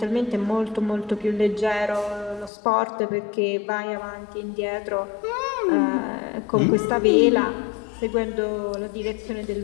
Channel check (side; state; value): right; drops out; at 2.5 s